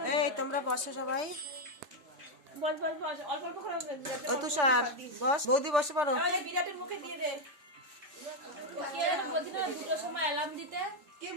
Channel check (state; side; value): late; left; 3.4 ms